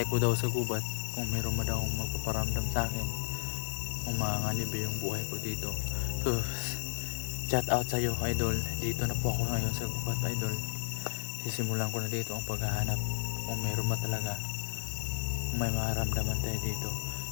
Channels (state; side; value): silent; right; 56 dB below the other